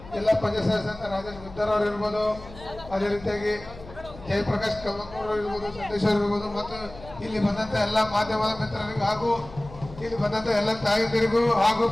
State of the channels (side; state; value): left; noise; hum, 17 dB below the sound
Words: ಜಿಲ್ಲಾ ಪಂಚಾಯತ್ ಸದಸ್ಯ ರಾಜೇಶ್ ಗುದ್ದರ್ ಅವರು ಇರ್ಬೋದು, ಅದೇ ರೀತಿಯಾಗಿ ಜಯಪ್ರಕಾಶ್ ಕಮಕೂರ್ ಇರ್ಬೋದು, ಸಂದೇಶ್ ಅವರು ಇರ್ಬೋದು, ಮತ್ತು ಇಲ್ಲಿ ಬಂದಂತ ಎಲ್ಲ ಮಾಧ್ಯಮದ ಮಿತ್ರರಿಗೂ ಹಾಗೂ ಇಲ್ಲಿ ಬಂದಂತ ಎಲ್ಲ ತಾಯಂದಿರಿಗೂ ಹಾಗೂ